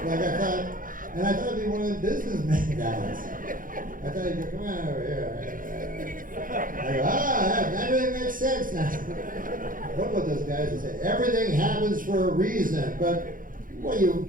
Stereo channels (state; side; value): late; left; 0.40 ms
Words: I thought it'd be one of the businessmen guys. I thought he'd go, come on over here. I go, everything makes sense now. What about those guys that say, everything happens for a reason, but what, you